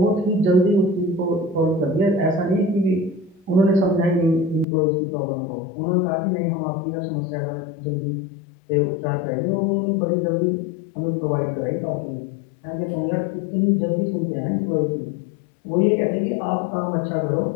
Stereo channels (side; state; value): right; drops out; at 4.7 s